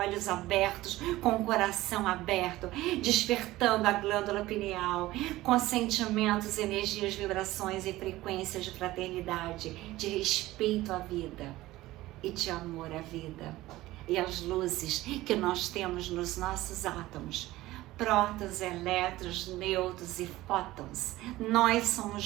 abertos, com o coração aberto, despertando a glândula pineal, com sentimentos, energias, vibrações e frequências de fraternidade, de respeito à vida e de amor à vida. E as luzes que nós temos nos nossos átomos, prótons, elétrons, nêutrons e fótons. Nós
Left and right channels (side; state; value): left; quieter; 17.2 dB